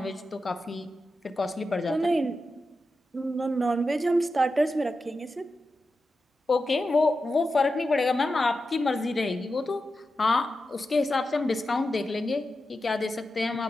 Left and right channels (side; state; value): both; normal; correlation 0.91